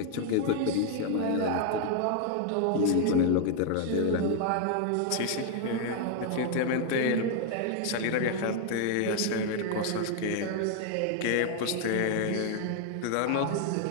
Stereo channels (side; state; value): both; different; correlation 0.00